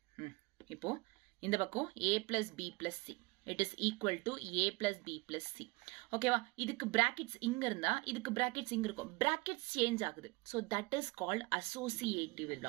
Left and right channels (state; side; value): quieter; left; 24.8 dB